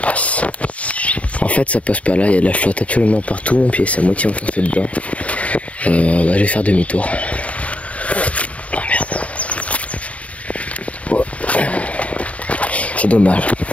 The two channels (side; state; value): right; late; 0.066 ms